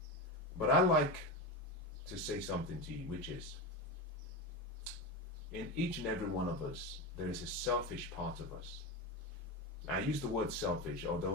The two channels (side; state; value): both; normal; correlation 0.19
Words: But I like to say something to you, which is, in each and every one of us, there is a selfish part of us. I use the word selfish,